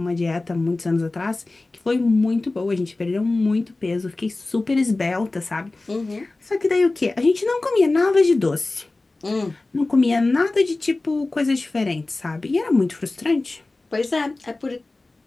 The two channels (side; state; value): right; quieter; 3.1 dB